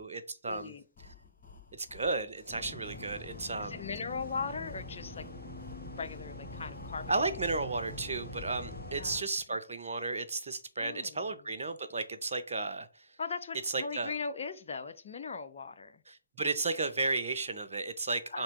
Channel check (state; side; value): inverted; both; correlation -0.67